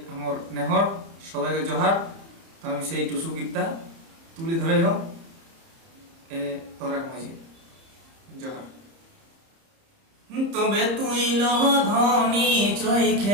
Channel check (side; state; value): left; late; 30 ms